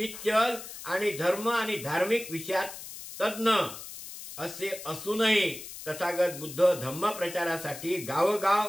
आणि धर्म आणि धार्मिक विषयात तज्ञ असे असूनही तथागत बुद्ध धम्म प्रचारासाठी गावोगाव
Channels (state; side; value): noise; left; hiss, 12 dB below the sound